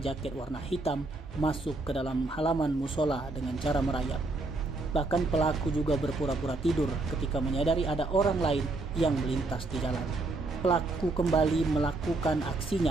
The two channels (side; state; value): left; quieter; 3.2 dB